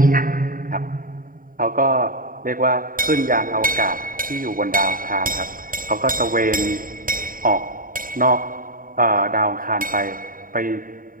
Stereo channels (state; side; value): late; left; 0.41 ms